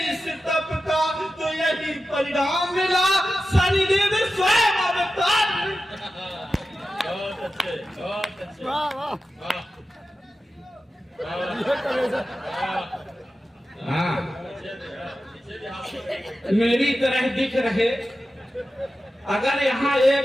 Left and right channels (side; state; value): both; normal; correlation 0.92